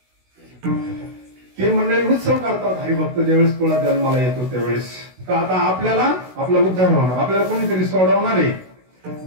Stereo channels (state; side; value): late; left; 16 ms